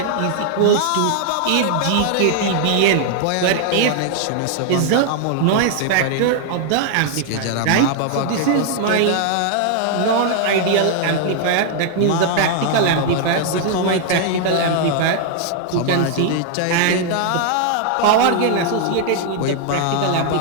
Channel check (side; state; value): both; different; correlation 0.00